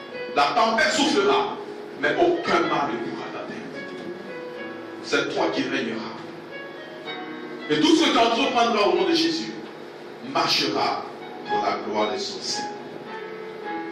la tempête soufflera, mais aucun mal ne pourra t'atteindre. C'est toi qui régneras. Et tout ce que tu entreprendras au nom de Jésus marchera pour la gloire de son Seigneur.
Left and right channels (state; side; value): identical; both; correlation 1.00